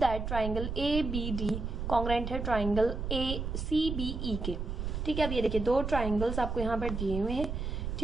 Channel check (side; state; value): right; noise; rumble, 4 dB below the sound